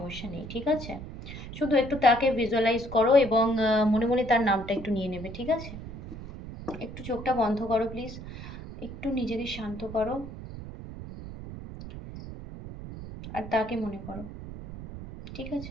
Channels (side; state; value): right; noise; rumble, 11 dB below the sound